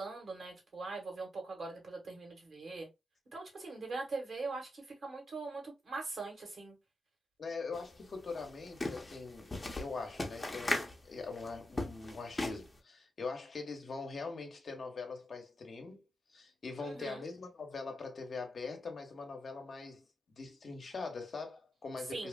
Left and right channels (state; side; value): normal; both; correlation 0.87